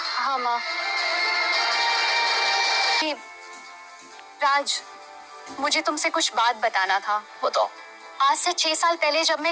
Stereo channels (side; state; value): both; identical; correlation 1.00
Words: माँ। राज, मुझे तुमसे कुछ बात बताना था। बताओ। आज से 6 साल पहले जब